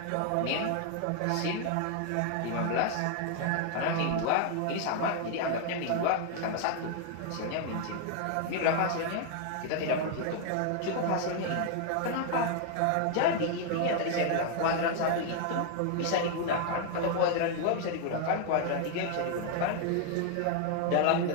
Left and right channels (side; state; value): both; different; correlation 0.00